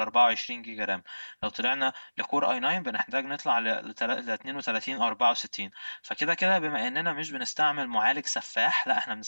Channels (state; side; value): inverted; both; correlation -1.00